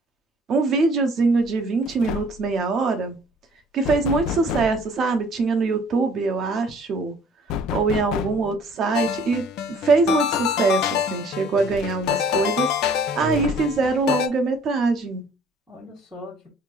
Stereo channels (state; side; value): normal; both; correlation 0.55